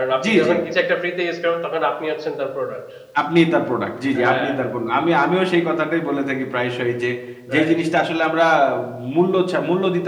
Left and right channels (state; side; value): identical; both; correlation 1.00